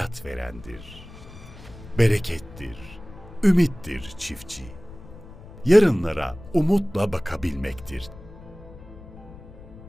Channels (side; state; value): left; noise; rumble, 17 dB below the sound